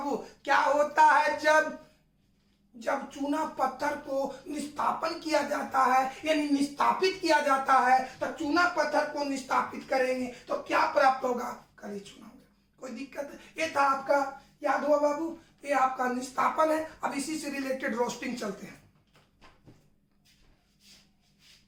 क्या होता है जब चूना पत्थर को निष्कापन किया जाता है यानी निष्कापित किया जाता है, तो चूना पत्थर को निष्कापित करेंगे तो क्या प्राप्त होगा? काली चूना। कोई दिक्कत है? ये था आपका, याद हुआ बाबू, ये आपका निष्कापन है। अब इसी से रिलेटेड रोस्टिंग चलते हैं।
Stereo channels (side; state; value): both; identical; correlation 1.00